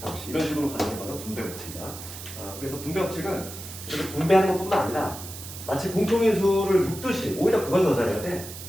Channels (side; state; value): right; noise; hiss, 12 dB below the sound